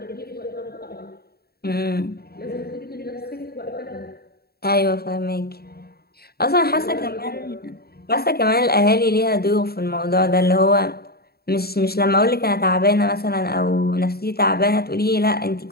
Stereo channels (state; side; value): late; right; 0.45 ms